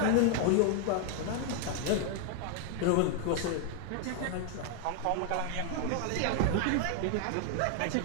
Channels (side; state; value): both; different; correlation 0.00